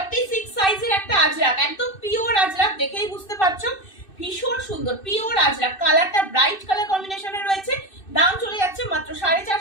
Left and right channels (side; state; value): right; late; 2.6 ms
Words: সাইজের একটা আজরাক, একদম পিওর আজরাক, দেখেই বুঝতে পারছো ভীষণ সুন্দর পিওর আজরাক। কালারটা ব্রাইট কালার কম্বিনেশনে রয়েছে। দাম চলে যাচ্ছে মাত্র